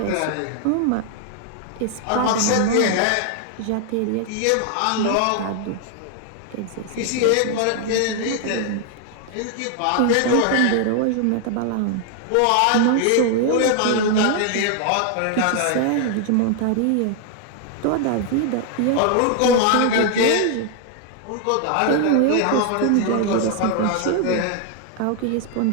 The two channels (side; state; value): both; different; correlation 0.00